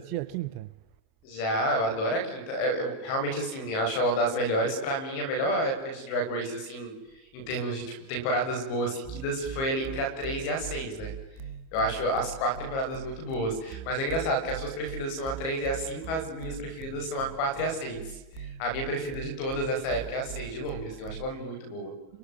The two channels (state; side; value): late; right; 37 ms